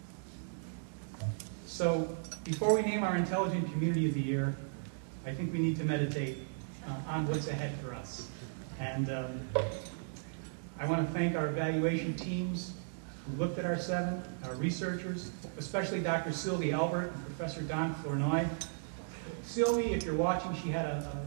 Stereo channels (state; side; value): silent; left; digital silence